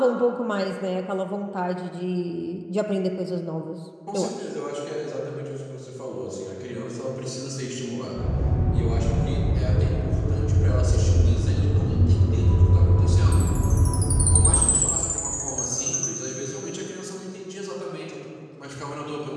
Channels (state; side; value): identical; both; correlation 1.00